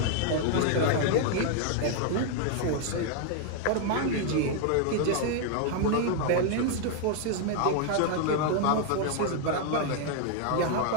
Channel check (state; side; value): different; both; correlation 0.00